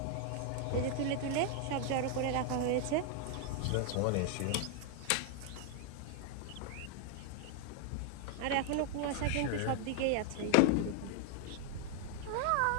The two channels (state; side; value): different; both; correlation 0.00